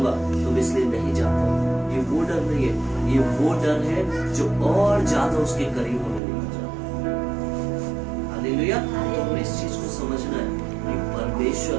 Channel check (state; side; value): drops out; left; at 6.2 s